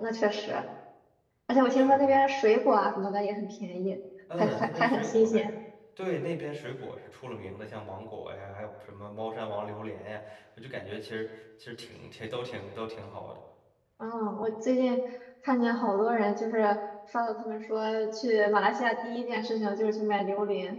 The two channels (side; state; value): both; identical; correlation 1.00